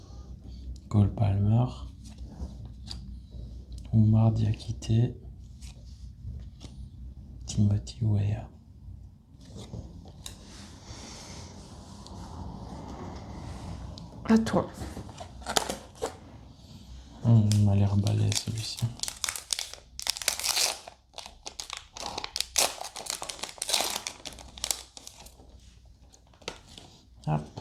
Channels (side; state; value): both; identical; correlation 1.00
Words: Cole Palmer. Oumar Diakité. Timothy Weah. À toi. Il m'a l'air balai celui-ci. Hop,